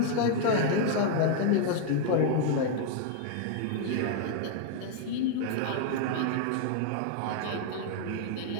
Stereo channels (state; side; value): different; both; correlation 0.00